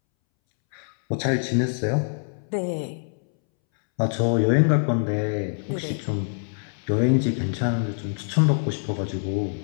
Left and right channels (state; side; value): silent; right; 62 dB below the other